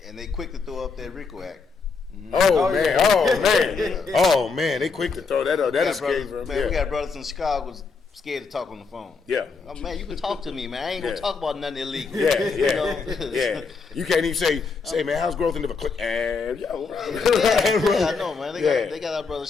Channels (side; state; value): right; quieter; 4.8 dB